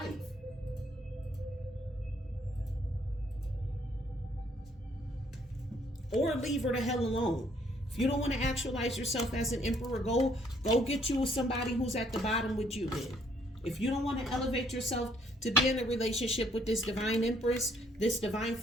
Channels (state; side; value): normal; both; correlation 0.66